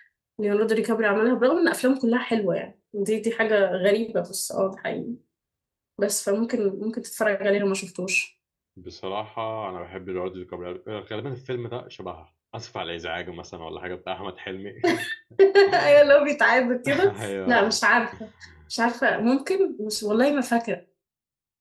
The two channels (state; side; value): identical; both; correlation 1.00